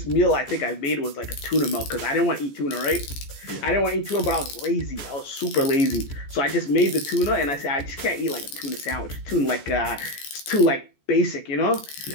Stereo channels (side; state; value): right; late; 14 ms